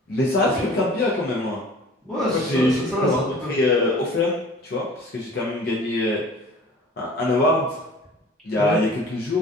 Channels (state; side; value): normal; both; correlation 0.46